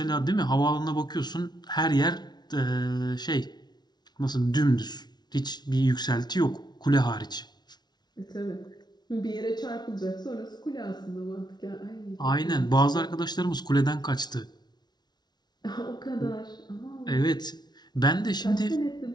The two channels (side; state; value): right; late; 0.20 ms